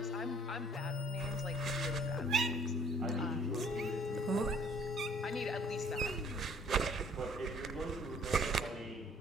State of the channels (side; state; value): both; normal; correlation 0.58